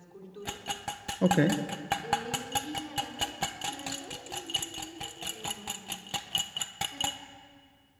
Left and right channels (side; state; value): both; identical; correlation 1.00